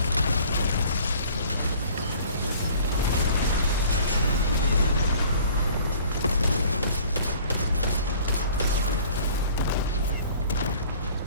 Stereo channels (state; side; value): inverted; both; correlation -0.50